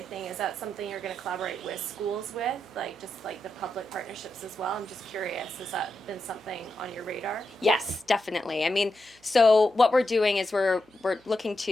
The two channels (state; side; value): noise; right; hum, 30 dB below the sound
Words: is that something you're going to collaborate with schools with, just like the public partnerships as well? I'm just curious, has that been something on your radar? Yes, definitely. I mean, so what we're doing is we're looking